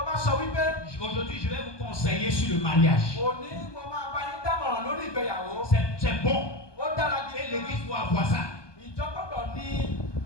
bá sọ wípé aujourd'hui je vais vous conseiller sur le mariage. òní mo máa bá yín dámọ̀ràn lórí ìgbéyàwó. C'est bon. Ó dára Et gidi. l'église doit avoir ça. Ìjọ gbọ́dọ̀ ní.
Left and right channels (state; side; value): late; right; 1.2 ms